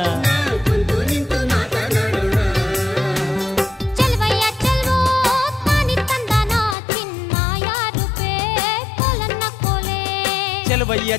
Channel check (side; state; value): right; drops out; at 6.8 s